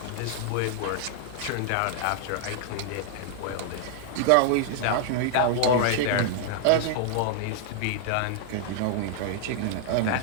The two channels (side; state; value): both; different; correlation -0.01